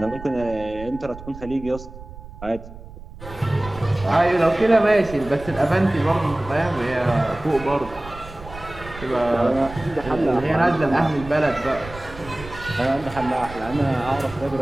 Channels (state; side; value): noise; right; rumble, 15 dB below the sound